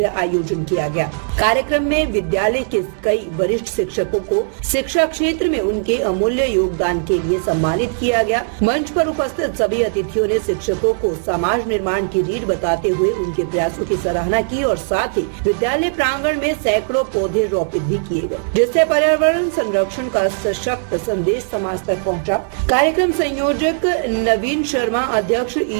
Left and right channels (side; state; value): left; silent; digital silence